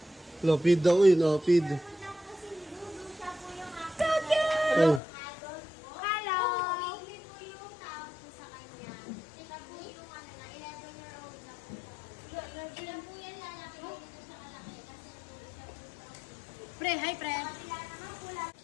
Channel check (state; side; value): drops out; right; at 5.0 s